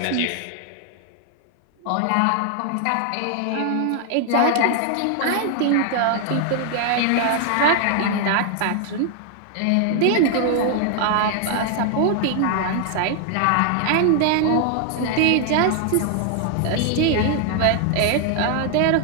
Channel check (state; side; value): different; both; correlation 0.00